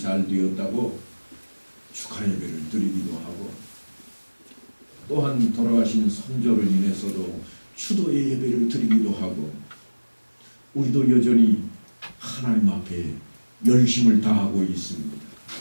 되었다고 축하 예배를 드리기도 하고 또한 돌아가신 선조를 인해서도 추도의 예배를 드리기도 하고 우리도 여전히 하나님 앞에 열심을 다하고 있습니다.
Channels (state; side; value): inverted; both; correlation -1.00